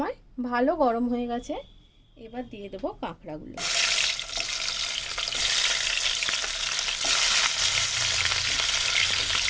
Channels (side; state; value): both; identical; correlation 1.00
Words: ভালো গরম হয়ে গেছে, এবার দিয়ে দেব কাঁকড়াগুলো।